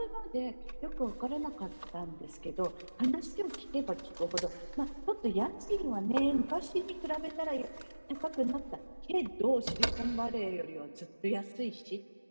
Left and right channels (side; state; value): both; inverted; correlation -1.00